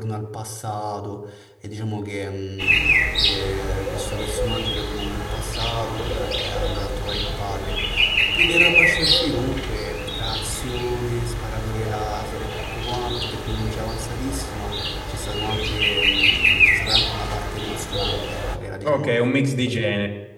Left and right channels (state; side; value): identical; both; correlation 1.00